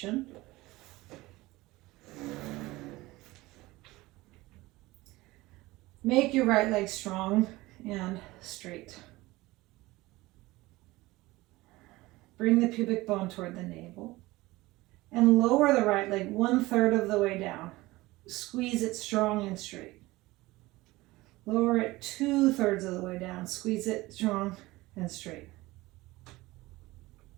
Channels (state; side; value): quieter; left; 19.8 dB